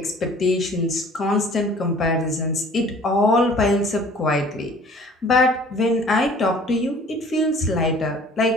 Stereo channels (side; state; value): both; normal; correlation 0.50